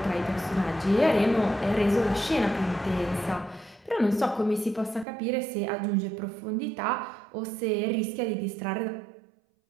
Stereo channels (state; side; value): drops out; left; at 5.1 s